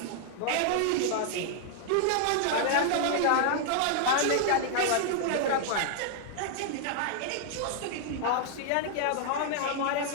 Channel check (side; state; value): both; different; correlation -0.01